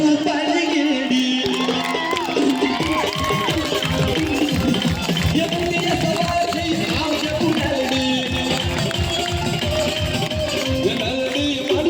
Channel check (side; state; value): both; identical; correlation 1.00